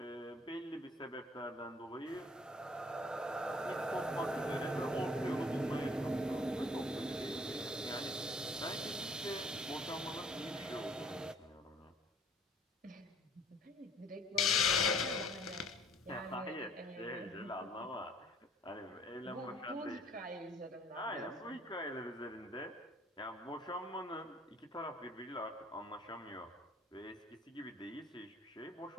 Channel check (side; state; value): both; normal; correlation 0.57